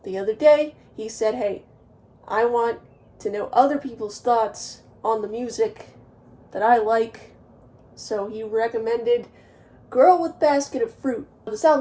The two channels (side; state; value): both; identical; correlation 1.00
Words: the other day he said, hey, I want to know other people's thoughts on the music that I like, so he recommended Girl with Basket of Fruit. This